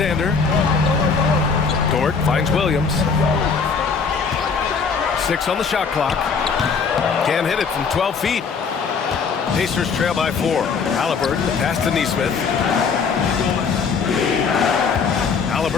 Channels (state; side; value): quieter; right; 5.5 dB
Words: Dort finds Williams. 6 on the shot clock. Can't hit it from 12 feet. Pacers trail by 4. Halliburton, pass to Nesmith.